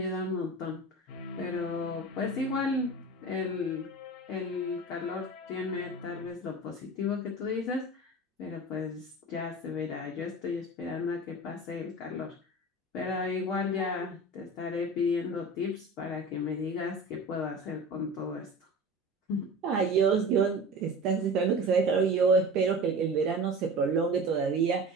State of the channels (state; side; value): normal; both; correlation 0.35